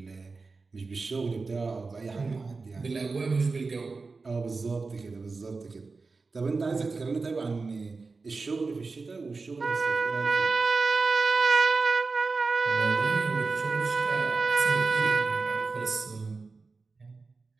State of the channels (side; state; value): left; quieter; 4.1 dB